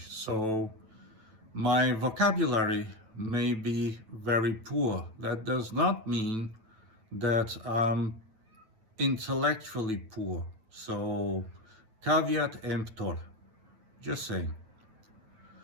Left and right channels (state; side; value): late; left; 9.0 ms